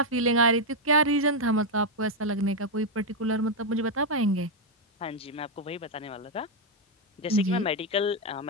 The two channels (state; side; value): normal; both; correlation 0.01